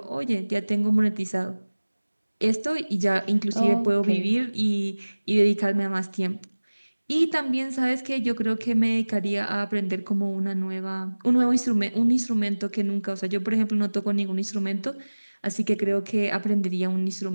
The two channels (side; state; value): both; inverted; correlation -1.00